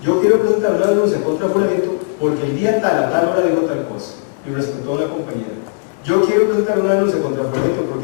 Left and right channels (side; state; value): right; silent; digital silence